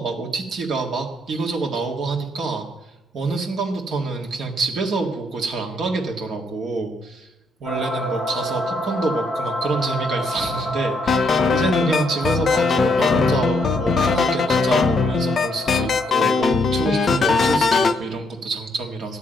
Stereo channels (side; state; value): both; normal; correlation 0.73